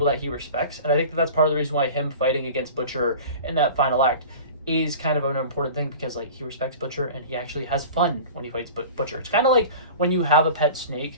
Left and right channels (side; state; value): both; inverted; correlation -0.38